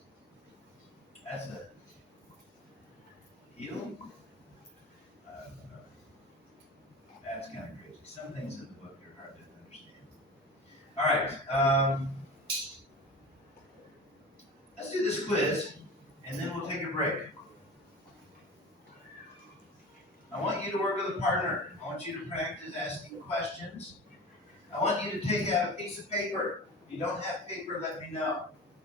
That's a heel. That's kind of crazy. Some things in the book are hard to understand. All right. Let's do this quiz, and then we'll take a break. I want you to work with a partner. I want you to practice asking questions. I want you to take out a piece of paper. If you don't have paper, let me know.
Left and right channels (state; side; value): normal; both; correlation 0.34